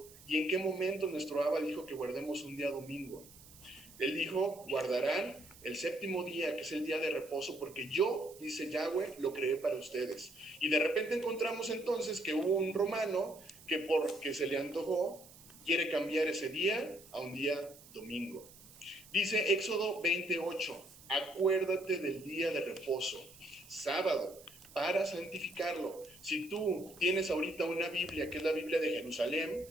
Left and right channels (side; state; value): right; noise; hiss, 21 dB below the sound